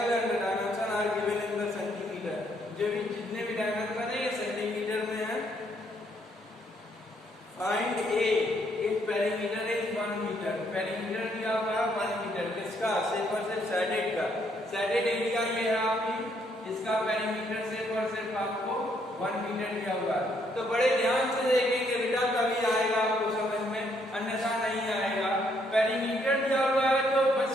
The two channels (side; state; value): both; normal; correlation 0.71